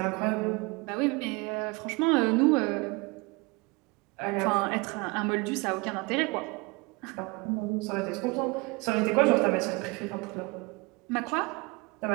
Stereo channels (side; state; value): left; quieter; 26.7 dB